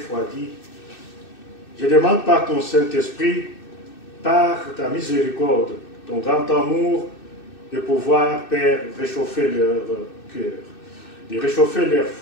je demande par ton Saint-Esprit, par ta miséricorde, ton grand amour, de pouvoir, Père, réchauffer leur cœur, de réchauffer leur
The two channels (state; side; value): late; right; 2.6 ms